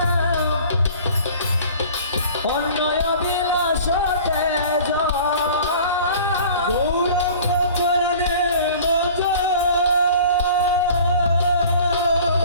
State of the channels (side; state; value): both; inverted; correlation -0.45